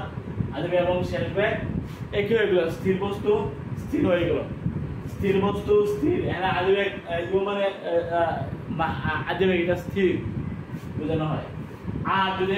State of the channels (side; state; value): both; identical; correlation 1.00